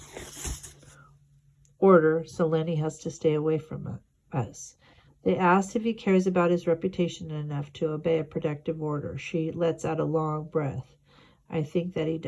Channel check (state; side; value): identical; both; correlation 1.00